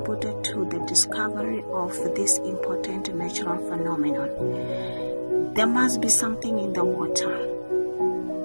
to the discovery of this important natural phenomenon. There must be something in the water.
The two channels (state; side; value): inverted; both; correlation -1.00